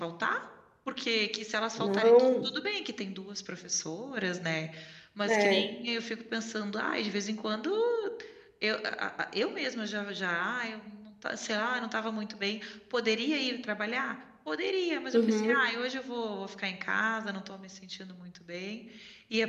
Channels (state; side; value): identical; both; correlation 1.00